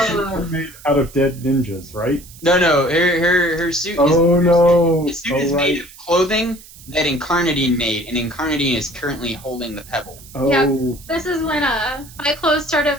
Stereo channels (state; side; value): noise; right; hiss, 20 dB below the sound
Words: are made out of dead ninjas, right? No, her suit. No. His suit is made of clothing that Incarnadine made, and Incarnadine is currently holding the pebble. Oh, Yeah. This is when my clothes started